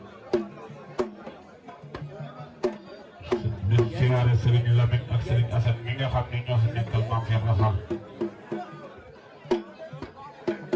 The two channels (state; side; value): identical; both; correlation 1.00